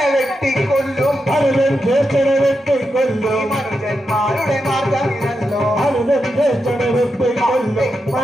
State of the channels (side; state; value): both; normal; correlation 0.87